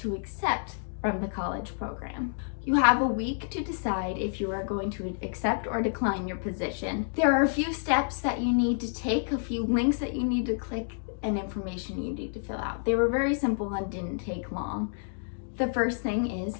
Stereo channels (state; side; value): silent; right; digital silence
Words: accept from the college program. You have a week to decide if you are going to accept or decline your position. There are a few steps that you need to take, a few links that you need to click, and information you need to fill out. They were very simple and didn't take long. The first thing is